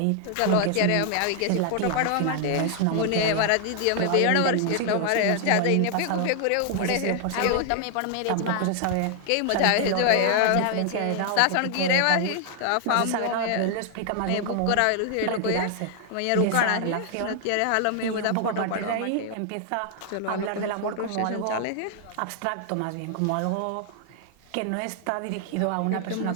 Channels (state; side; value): different; both; correlation 0.00